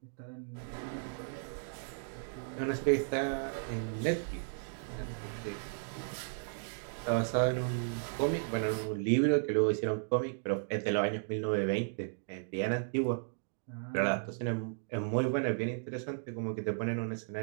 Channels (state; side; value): silent; left; digital silence